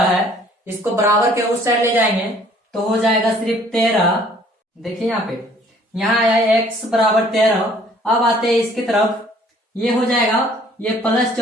है, इसको बराबर के उस साइड ले जाएंगे तो हो जाएगा सिर्फ 13। देखिए यहाँ पे यहाँ आया है x बराबर 13, अब आते हैं इसकी तरफ, ये हो जाएगा ये प्लस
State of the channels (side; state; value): both; normal; correlation 0.57